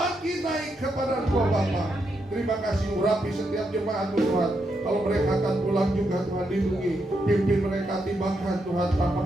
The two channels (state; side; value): normal; both; correlation 0.81